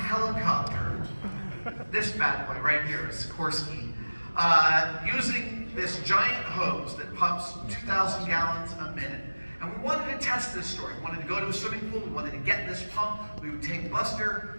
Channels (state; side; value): inverted; both; correlation -1.00